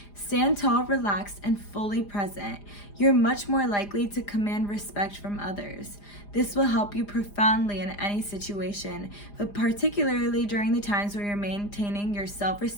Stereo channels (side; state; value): right; late; 4.9 ms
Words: Stand tall, relaxed, and fully present. You're much more likely to command respect from others. This will help you profoundly in any situation, but particularly during the times where you're maintaining your